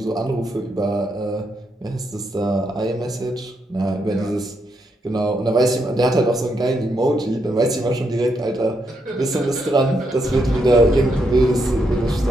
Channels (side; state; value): both; normal; correlation 0.79